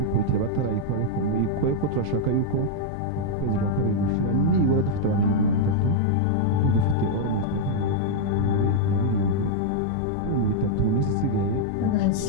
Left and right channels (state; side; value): different; both; correlation -0.01